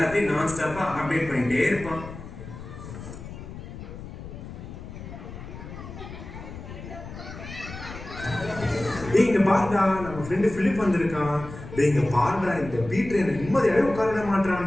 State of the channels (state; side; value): noise; left; rumble, 12 dB below the sound